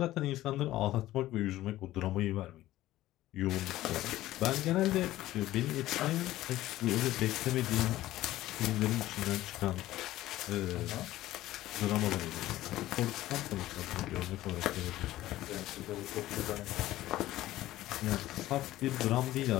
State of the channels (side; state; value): right; quieter; 15.3 dB